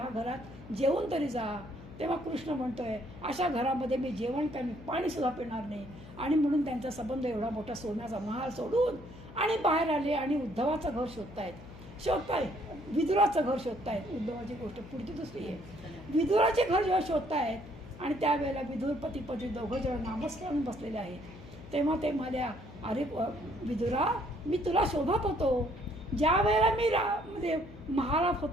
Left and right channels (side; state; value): left; noise; hum, 16 dB below the sound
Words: घरात जेवून तरी जा. तेव्हा कृष्ण म्हणतोय अशा घरामध्ये मी जेवण काय पाणी सुद्धा पिणार नाही. आणि म्हणून त्यांचा संबंध एवढा मोठा सोन्याचा महाल सोडून आणि बाहेर आले आणि उद्धवाचं घर शोधताय विदुराचं घर शोधतायत. उद्धवाची गोष्ट पुढची दुसरी आहे. विदुराचे घर जेव्हा शोधतायत आणि त्यावेळेला विदुर पती दोघं जण नामस्मरण बसलेले आहेत. तेव्हा ते म्हणाल्या अरे विदुरा मी तुला शोधत होतो. ज्या वेळेला मी म्हणजे महालात